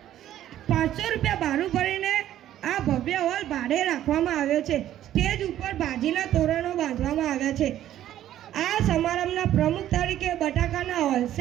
500 રૂપિયા ભાડું ભરીને આ ભવ્ય હોલ ભાડે રાખવામાં આવ્યો છે. સ્ટેજ ઉપર ભાજીના તોરણો બાંધવામાં આવ્યા છે. આ સમારંભના પ્રમુખ તરીકે બટાકાના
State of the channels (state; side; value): quieter; left; 12.2 dB